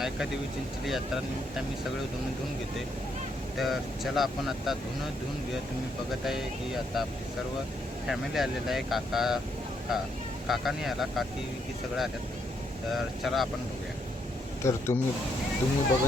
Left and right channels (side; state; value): both; normal; correlation 0.75